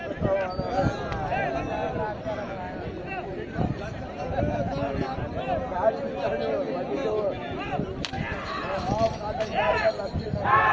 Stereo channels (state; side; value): identical; both; correlation 1.00